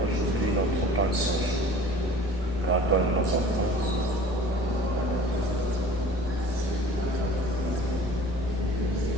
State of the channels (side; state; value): both; normal; correlation 0.46